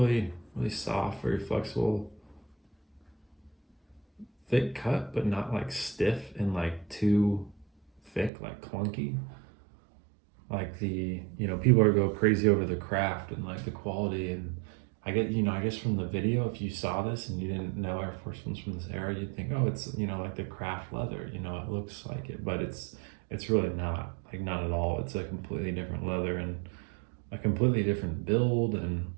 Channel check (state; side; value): drops out; left; at 8.3 s